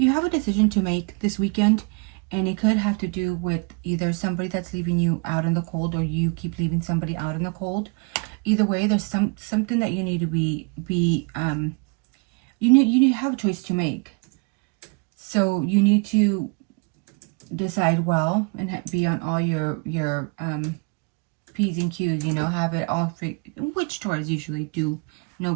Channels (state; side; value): quieter; left; 33.4 dB